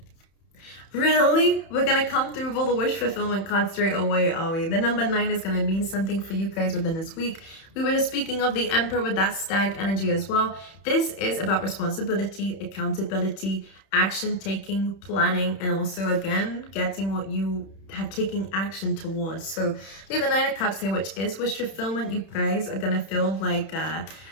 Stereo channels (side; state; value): right; late; 31 ms